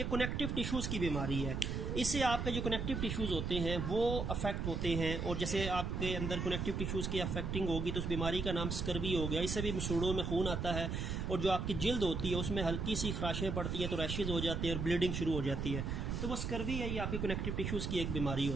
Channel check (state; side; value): noise; right; rumble, 2 dB below the sound